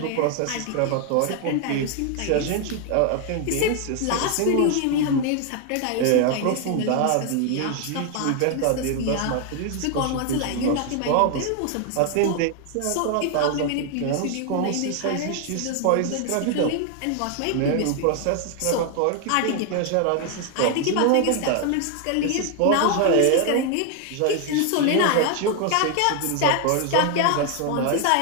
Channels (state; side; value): different; both; correlation 0.00